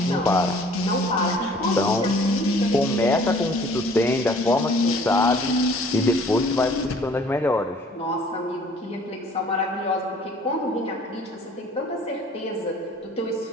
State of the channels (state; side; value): normal; both; correlation 0.54